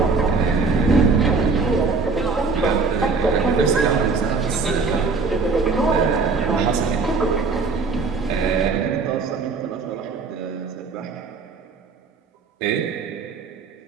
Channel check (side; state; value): left; quieter; 4.4 dB